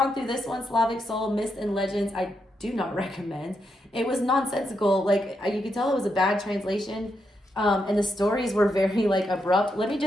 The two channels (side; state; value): both; normal; correlation 0.82